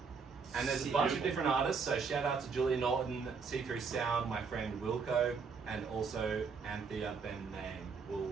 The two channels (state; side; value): quieter; left; 5.4 dB